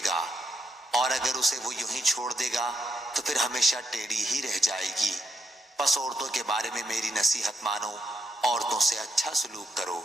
گا، اور اگر اسے وہ یوں ہی چھوڑ دے گا تو پھر ہمیشہ ٹیڑھی ہی رہ جائے گی۔ پس عورتوں کے بارے میں میری نصیحت مانو، عورتوں سے اچھا سلوک کرو۔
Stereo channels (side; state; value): both; normal; correlation 0.79